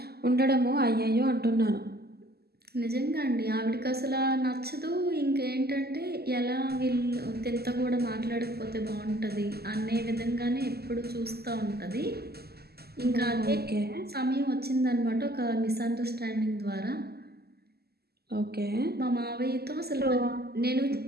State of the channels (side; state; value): left; late; 0.46 ms